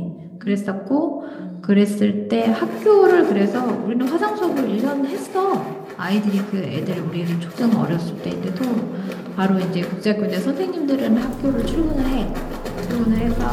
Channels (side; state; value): both; identical; correlation 1.00